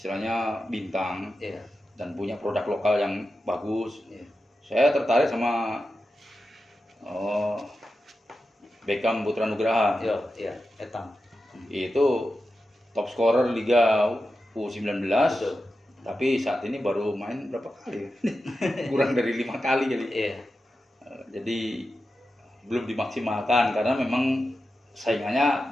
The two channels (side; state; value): both; normal; correlation 0.91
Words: bintang Iya. dan punya produk lokal yang bagus. Iya. Saya tertarik sama Beckham Putra Nugraha. Iya, Etang. Itu top scorer Liga U19. Betul. Tapi saat ini baru main berapa kali? Kurang dari 5 kali kali. Iya. Jadi belum dimaksimalkan karena memang